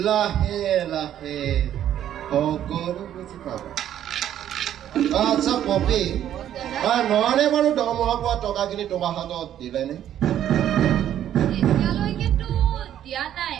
লাহে লাহে সকলো বুজি পাবা আচ্ছা পপি নহলে বাৰু দৰমহা পোৱা টকাখিনি তোমাৰ হাতত দিলেনে এতিয়ালৈকেতো দিয়া নাই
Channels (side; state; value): left; quieter; 11.0 dB